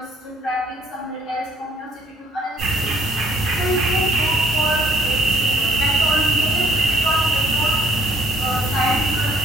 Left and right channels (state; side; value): normal; both; correlation 0.62